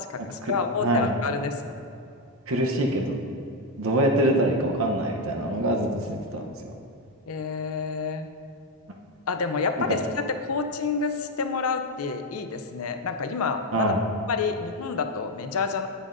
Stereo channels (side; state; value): both; normal; correlation 0.06